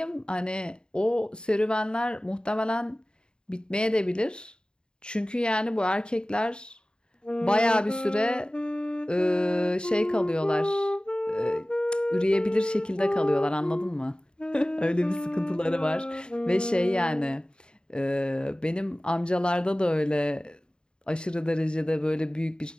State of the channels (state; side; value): late; right; 0.049 ms